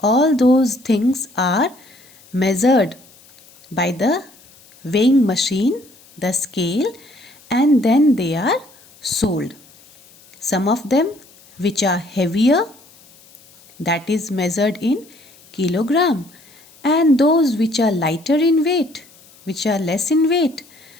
all those things are measured by the weighing machine, the scale, and then they are sold. Some of them which are heavier, that is measured in kilogram, and those which are lighter in weight, which are less in weight,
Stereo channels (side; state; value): left; noise; hiss, 26 dB below the sound